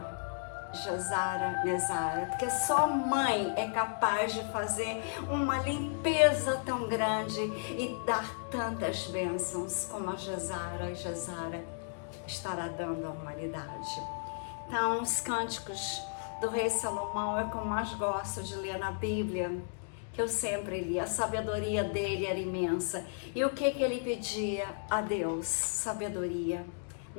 Gesara, Nezara, porque só mãe é capaz de fazer uma limpeza tão grande e dar tantas bênçãos como a Gesara estará dando à humanidade. Então, os cânticos do rei Salomão é o que eu mais gosto de ler na Bíblia, que eu sempre li. A sabedoria dele era imensa. E o que ele pedia a Deus? Sabedoria,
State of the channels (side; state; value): right; silent; digital silence